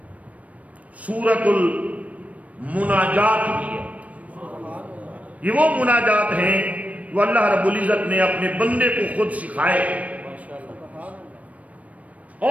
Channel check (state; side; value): late; left; 0.068 ms